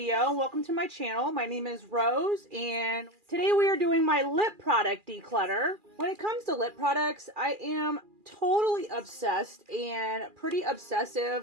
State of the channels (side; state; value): left; late; 2.4 ms